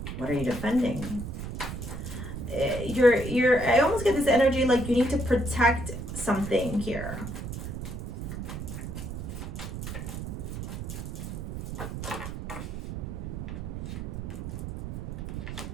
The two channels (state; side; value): noise; right; rumble, 6 dB below the sound